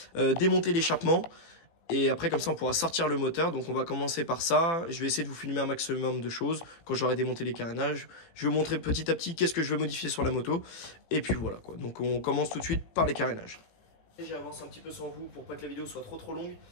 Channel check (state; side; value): late; right; 18 ms